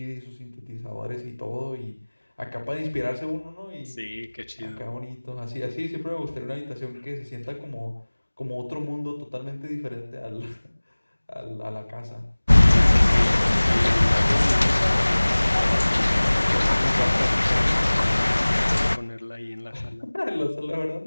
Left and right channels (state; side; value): inverted; both; correlation -1.00